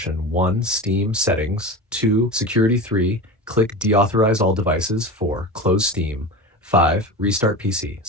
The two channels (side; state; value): both; normal; correlation 0.28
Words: 1. Steam settings. 2. Security. 3. Click deauthorize all devices. 4. Close Steam. 5. Restart PC.